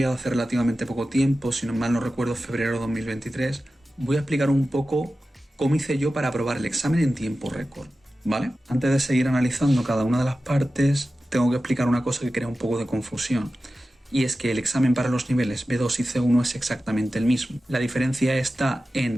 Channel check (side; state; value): both; normal; correlation 0.94